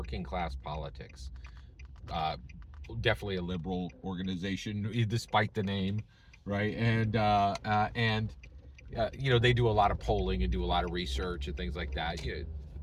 Class Politics. Uh, Definitely a liberal organization, despite the name, right? And they do a lot of polling and do a lot of research and things like that.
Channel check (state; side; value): identical; both; correlation 1.00